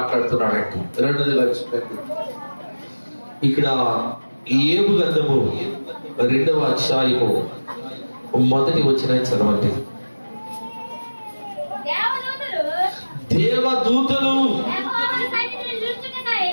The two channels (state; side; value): inverted; both; correlation -1.00